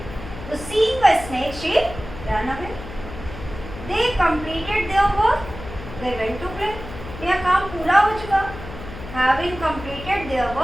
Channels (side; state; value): left; noise; hum, 12 dB below the sound